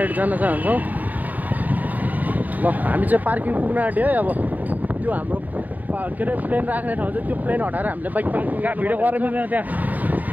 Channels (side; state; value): left; late; 0.081 ms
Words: जान चाहन्छौँ। ल हामी चाहिँ पार्किङ पुग्न आँट्यो है। अब त्यो हाम्रो के अरे प्लेन राख्ने ठाउँ चाहिँ त्यो प्लेन हटाएर हामीले बाइक पार्किङ भिडियो गर्न मिल्दैन त्यहाँ।